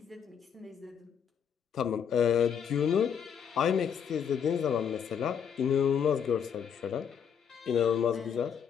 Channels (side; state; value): right; quieter; 7.7 dB